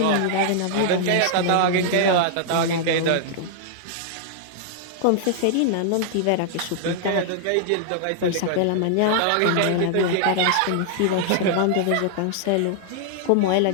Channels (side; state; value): both; different; correlation -0.01